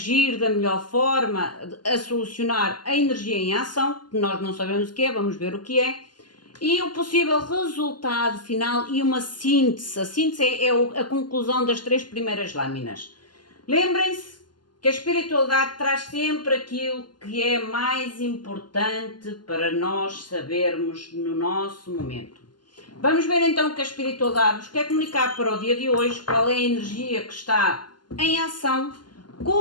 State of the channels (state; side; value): late; right; 0.71 ms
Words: da melhor forma a solucionar a energia em ação, que nós não sabemos o que é, vamos ver o que é, e o possível resultado final e uma síntese. A síntese é a conclusão das 3 primeiras lâminas. Lembrem-se que a espiritualidade traz sempre aquilo que é mais importante para nós sabermos no nosso momento. Vamos ver então o que a espiritualidade nos quer comunicar para o dia de hoje, qual é a energia que está em ação,